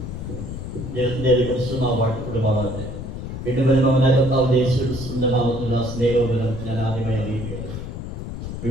കുടുംബമാകട്ടെ വീണ്ടും വരുന്ന കർത്താവ് യേശുവിന്റെ നാമത്തിലുള്ള സ്നേഹോപരം ഞാൻ ആദ്യമായി അറിയിക്കുകയാണ്.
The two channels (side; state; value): left; noise; rumble, 7 dB below the sound